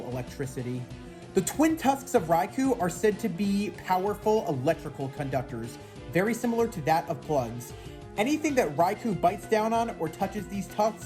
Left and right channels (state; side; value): identical; both; correlation 1.00